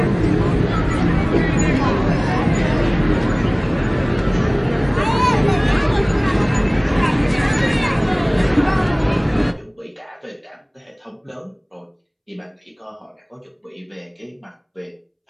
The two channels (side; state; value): both; identical; correlation 1.00